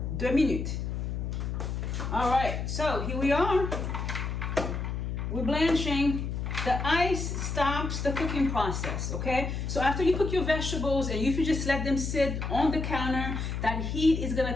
2 minutes. All right, so here we are. We're blanching. The ice stops the cooking process, okay? So after you cook your vegetables and if you just let them sit on the counter, that heat is gonna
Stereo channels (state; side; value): noise; left; hum, 3 dB below the sound